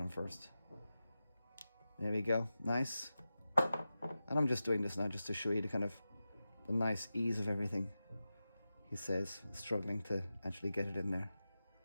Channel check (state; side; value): inverted; both; correlation -0.93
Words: first. There we go. Nice. And I'm just doing this now just to show you the kind of the nice ease of everything. He says, struggling to actually get it in there.